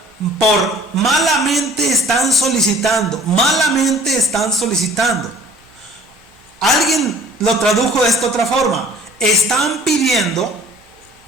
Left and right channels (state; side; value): normal; both; correlation 0.51